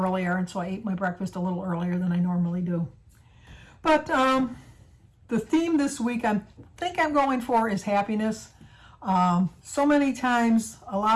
and so I ate my breakfast a little earlier than I normally do. But the theme this week I think I'm going for is happiness. So many times, a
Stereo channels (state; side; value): identical; both; correlation 1.00